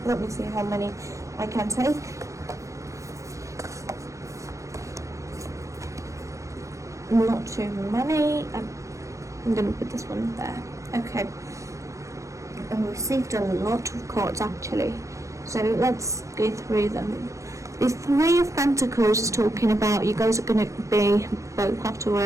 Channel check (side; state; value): left; late; 0.15 ms